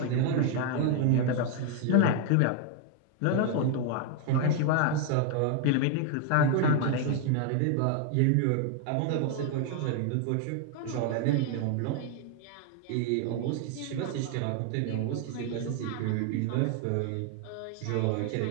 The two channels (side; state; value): both; different; correlation 0.00